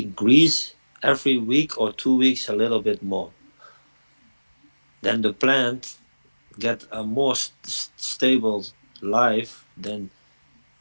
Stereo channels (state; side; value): inverted; both; correlation -1.00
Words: every week or 2 weeks a little bit more. Then the plant get a more stable life. Then